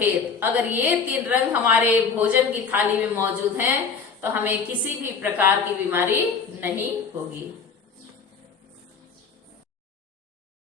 अगर ये 3 रंग हमारे भोजन की थाली में मौजूद हैं तो हमें किसी भी प्रकार की बीमारी नहीं होगी।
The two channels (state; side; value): quieter; right; 5.5 dB